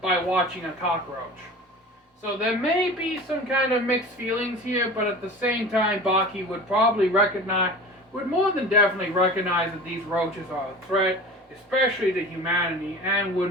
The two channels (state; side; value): normal; both; correlation 0.37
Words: watching a cockroach. So there may be some kind of mixed feelings here, but at the same time, Baki would more than definitely recognize that these roaches are a threat, especially to humanity, and